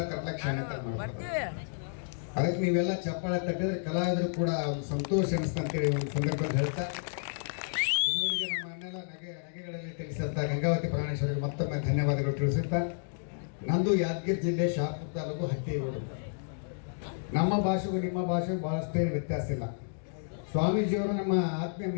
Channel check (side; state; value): right; silent; digital silence